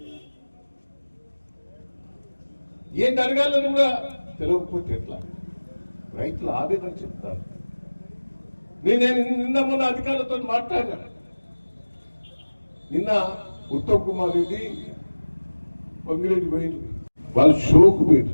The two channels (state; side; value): inverted; both; correlation -1.00